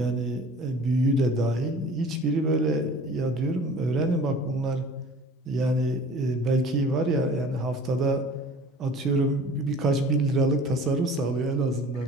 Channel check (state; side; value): normal; both; correlation 0.45